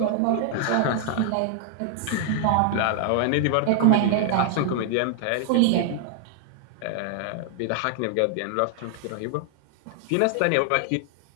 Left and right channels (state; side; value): different; both; correlation 0.00